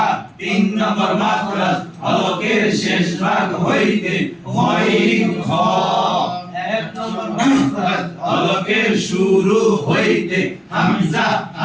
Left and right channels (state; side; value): identical; both; correlation 1.00